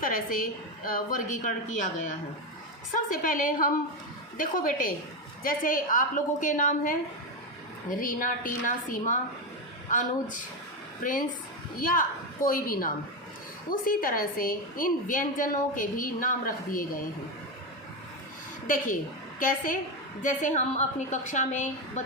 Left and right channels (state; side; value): normal; both; correlation 0.12